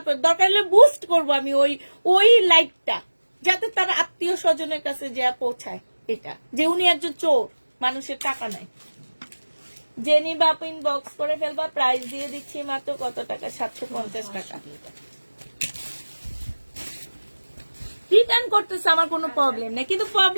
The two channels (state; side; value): inverted; both; correlation -1.00